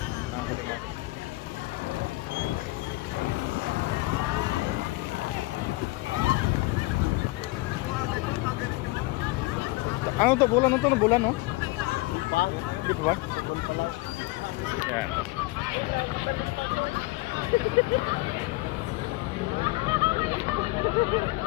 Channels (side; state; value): right; quieter; 21.6 dB